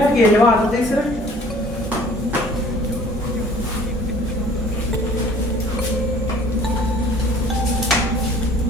గేలి వాటర్ తీసురా.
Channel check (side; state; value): both; normal; correlation 0.52